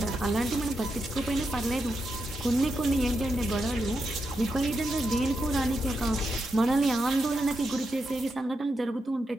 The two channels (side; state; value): both; normal; correlation 0.85